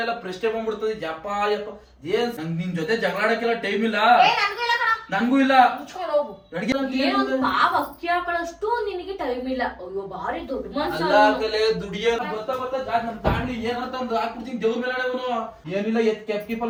ಎಲ್ಲ ಪ್ರಶ್ನೆ ಬಂದ್ಬಿಡ್ತದೆ. ಯಪ್ಪ ಯಪ್ಪ ಏನ್ ನಿನ್ ಜೊತೆ ಜಗಳಾಡಕ್ಕೆಲ್ಲ ಟೈಮ್ ಇಲ್ಲ, ನನ್ಗೂ ಇಲ್ಲ. ಅಕ್ಕಿ ಹಾಕೊಳ್ಳಷ್ಟು ನಿನಗೆ ಟೈಮ್ ಇಲ್ಲ. ಅಯ್ಯೋ ಬಾರಿ ದೊಡ್ಡ ಮನ್ಸ. ದುಡಿಯ ನಮ್ ತಾಂಡ್ಲಿ ಏನಂತ ಒಂದು ಹಾಕ್ಬಿಡ್ತೀನಿ ದೇವ್ರ ಮೇಲೆ ಅವನು ಏನಿಲ್ಲ ಎತ್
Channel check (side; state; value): both; identical; correlation 1.00